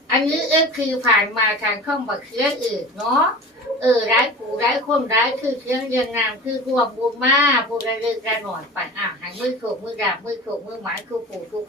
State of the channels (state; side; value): normal; both; correlation 0.36